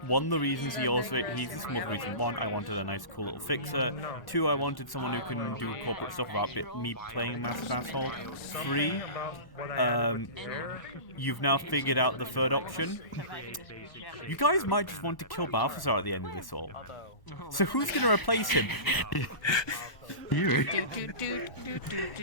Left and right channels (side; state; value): right; late; 1.1 ms